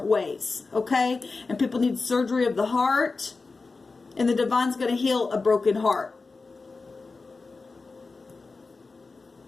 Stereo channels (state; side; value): quieter; right; 4.0 dB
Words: ways. Okay? And people need surgery of the heart. And the divine's going to heal a broken heart.